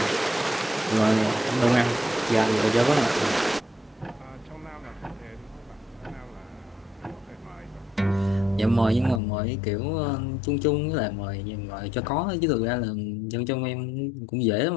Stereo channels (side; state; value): right; drops out; at 9.2 s